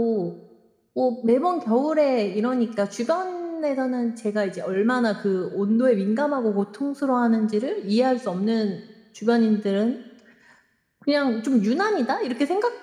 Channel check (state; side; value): identical; both; correlation 1.00